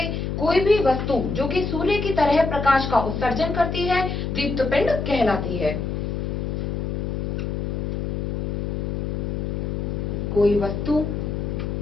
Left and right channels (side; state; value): left; noise; hum, 2 dB below the sound